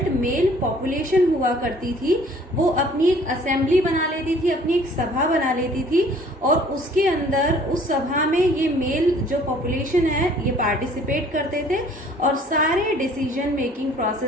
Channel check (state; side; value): normal; both; correlation 0.55